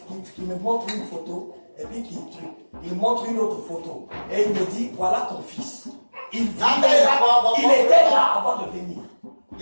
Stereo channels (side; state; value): both; inverted; correlation -1.00